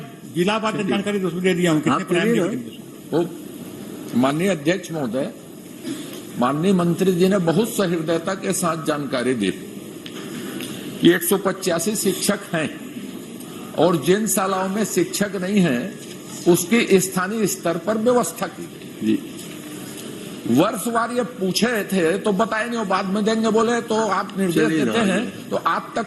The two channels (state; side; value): identical; both; correlation 1.00